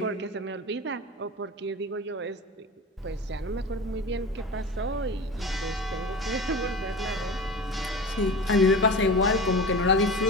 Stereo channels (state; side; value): normal; both; correlation 0.31